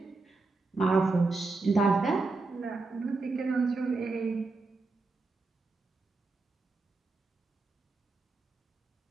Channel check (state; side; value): quieter; left; 3.6 dB